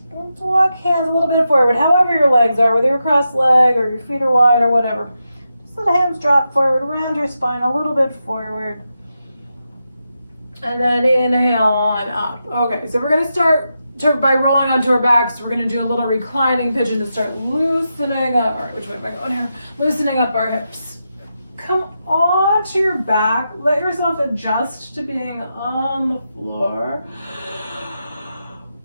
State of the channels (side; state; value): both; inverted; correlation -0.87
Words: Walk hands a little bit forward, however your legs are, whether you're cross-legged or your feet are wide or whatever. Just let the hands drop forward, around your spine a little bit forward. And then inhale on up. Okay, so we're going to start by rolling onto our backs. We're going to do a little reclining pigeon to start loosening up. All right, which way am I going here? Loosening up our hips. Come onto your back. Let yourself adjust to being on the floor.